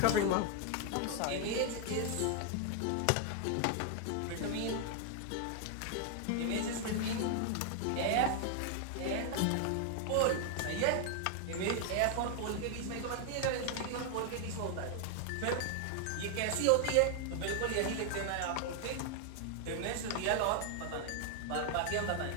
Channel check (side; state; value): both; different; correlation 0.00